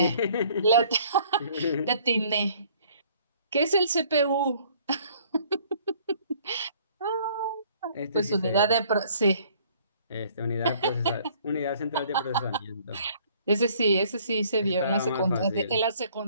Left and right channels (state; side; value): inverted; both; correlation -0.58